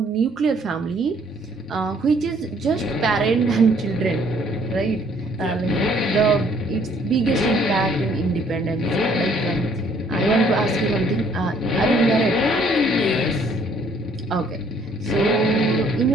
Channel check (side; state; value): both; normal; correlation 0.62